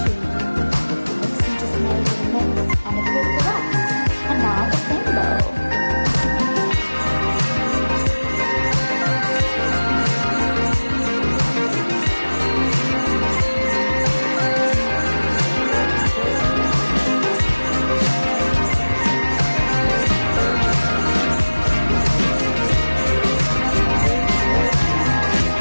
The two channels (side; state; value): both; inverted; correlation -1.00